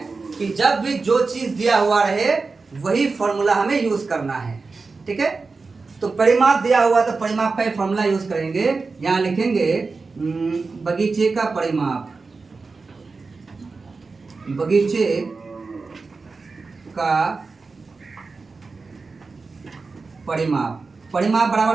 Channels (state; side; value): quieter; left; 4.2 dB